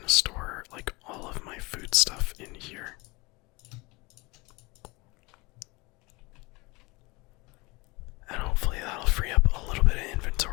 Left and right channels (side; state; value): right; quieter; 24.5 dB